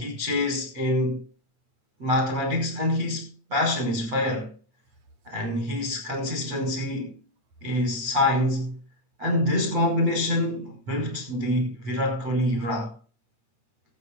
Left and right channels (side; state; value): left; late; 8.7 ms